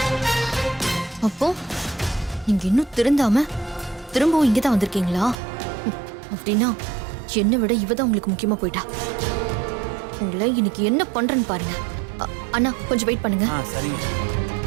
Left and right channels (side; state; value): left; drops out; at 5.4 s